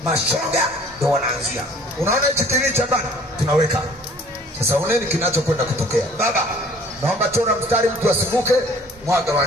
Mashoga ndio wanaanzia. Unaona hichi kile cha bana? Tunaweka. Sasa oneni kinachokwenda kutokea. Baba, naomba chora mstari, mtu asivuke, mwaga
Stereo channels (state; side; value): normal; both; correlation 0.53